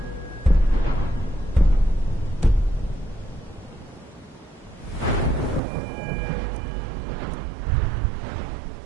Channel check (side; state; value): left; drops out; at 5.6 s